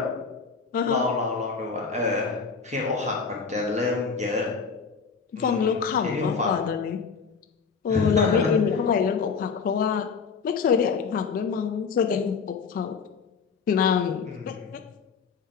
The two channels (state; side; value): quieter; right; 5.5 dB